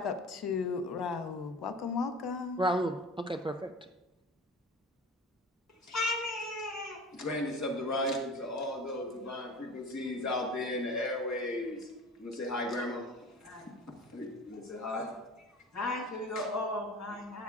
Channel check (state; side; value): normal; both; correlation 0.37